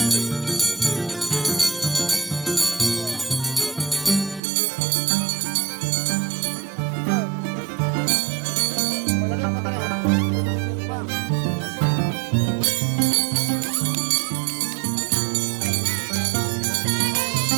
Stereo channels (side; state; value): left; drops out; at 4.4 s